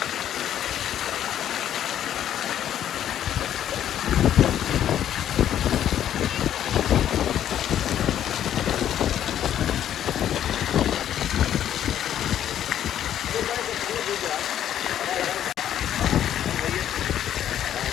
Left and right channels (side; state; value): right; quieter; 10.7 dB